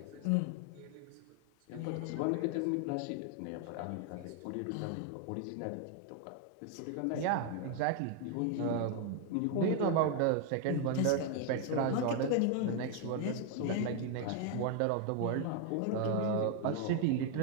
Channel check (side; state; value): both; different; correlation 0.01